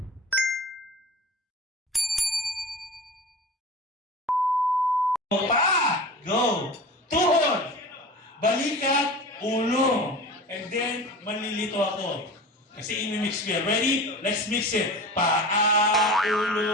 Pa! Go! Tuhod! Balikat, ulo. And then, malilito ako. Kasi imimix ko yan. Ready? Let's mix it. Paa,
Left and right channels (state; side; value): normal; both; correlation 0.34